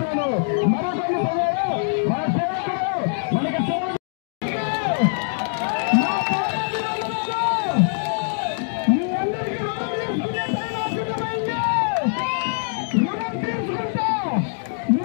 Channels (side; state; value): right; silent; digital silence